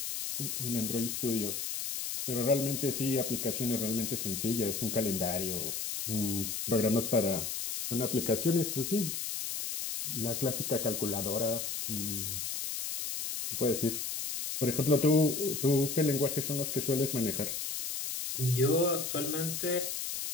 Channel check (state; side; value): noise; left; hiss, 3 dB below the sound